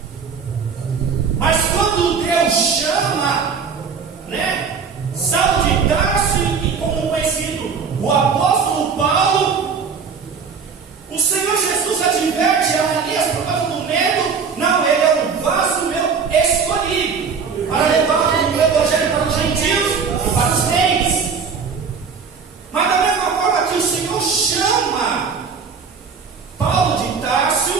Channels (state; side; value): quieter; left; 5.8 dB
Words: Mas quando Deus chama, né, Saulo de Tarso e como conhecido o apóstolo Paulo, o Senhor Jesus adverte a Ananias por causa do medo. Não, ele é um vaso meu escolhido para levar o evangelho para os gentios e para os reis. Mas da mesma forma que o Senhor chama Paulo de